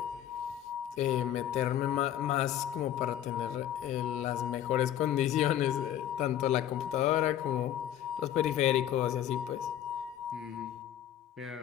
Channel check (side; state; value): right; quieter; 11.0 dB